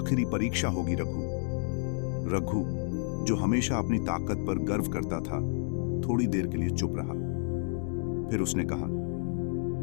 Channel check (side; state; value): right; silent; 58 dB below the other